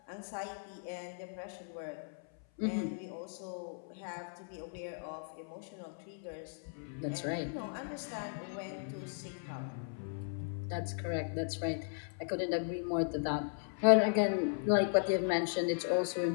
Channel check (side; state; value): right; silent; 53 dB below the other